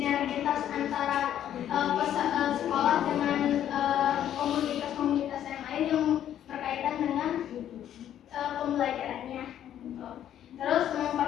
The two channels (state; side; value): quieter; right; 10.8 dB